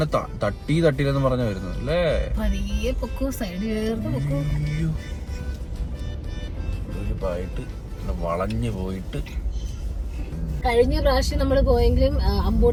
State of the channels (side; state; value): both; identical; correlation 1.00